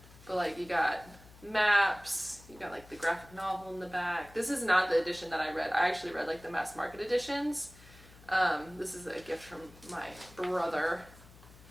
But like, you got maps, you got like the graphic novel in the back. This is not the edition that I read. I actually read like the mass market editions. This is a gift from my brother.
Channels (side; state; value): left; noise; hum, 22 dB below the sound